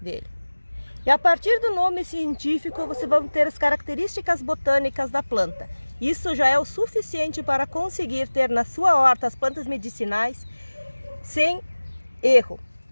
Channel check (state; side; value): inverted; both; correlation -1.00